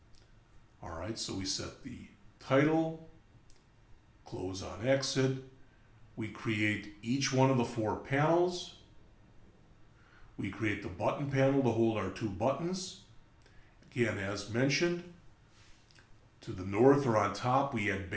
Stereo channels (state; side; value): identical; both; correlation 1.00